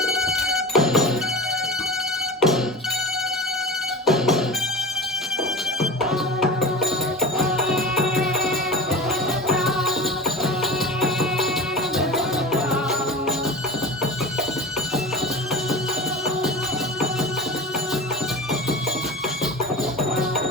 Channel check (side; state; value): both; normal; correlation 0.32